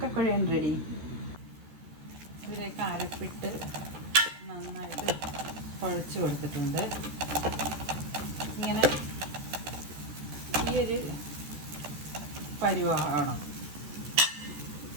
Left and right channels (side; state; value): left; late; 13 ms